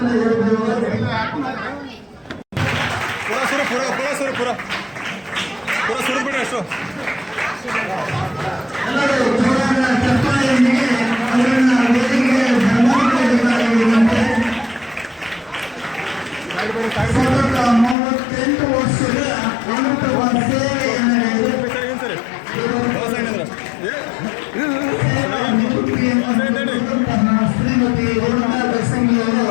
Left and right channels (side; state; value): right; drops out; at 17.9 s